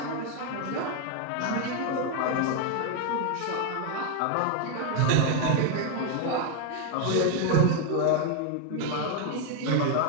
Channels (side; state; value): both; different; correlation 0.01